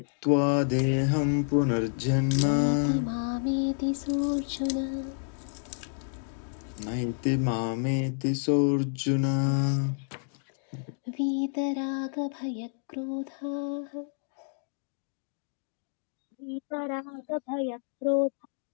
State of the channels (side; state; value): right; silent; digital silence